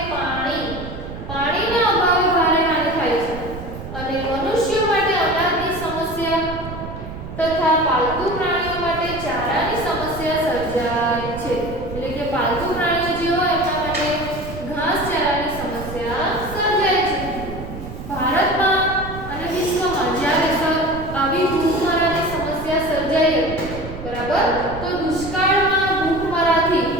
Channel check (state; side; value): noise; right; rumble, 10 dB below the sound